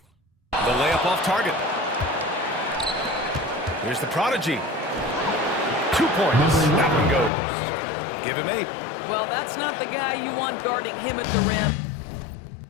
The layup off target. Here's the prodigy. 2 points. That one goes. Give him 8. Well, that's not the guy you want guarding him at the rim.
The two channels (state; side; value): drops out; right; at 7.3 s